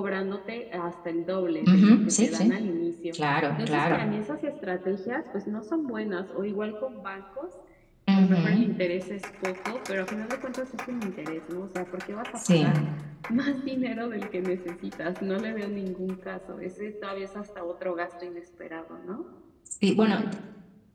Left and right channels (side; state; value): both; identical; correlation 1.00